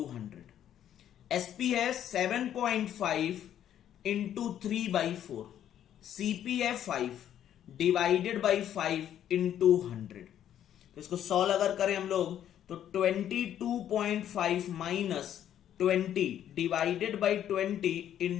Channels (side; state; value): right; quieter; 10.6 dB